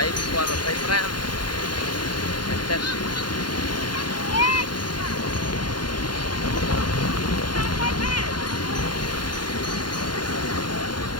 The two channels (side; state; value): right; late; 0.71 ms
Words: qua 25 ngày tết